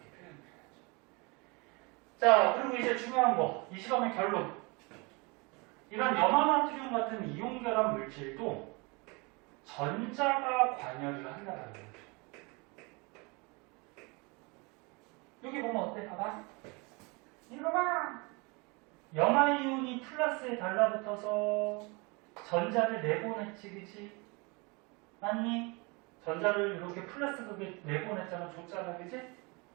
표현해야죠. 자, 그리고 이제 중요한 거. 이 시험의 결론. 이런 염화나트륨 같은 이온결합 물질도 전자가 관여를 한다는 거죠. 여기 보면 어때? 봐봐. 이거 봐. 염화이온이 플러스에 달라붙어서 전자를 내보냈지, 그치? 맞니? 전자를 이렇게 플러스 극에 내보냈잖아, 줬잖아, 그치?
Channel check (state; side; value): quieter; left; 28.5 dB